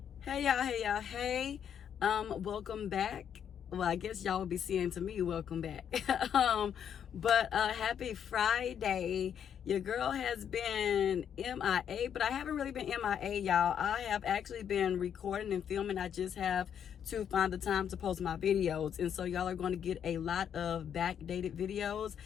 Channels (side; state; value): right; quieter; 8.6 dB